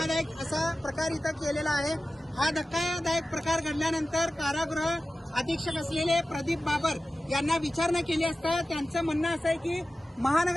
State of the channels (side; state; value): both; normal; correlation 0.95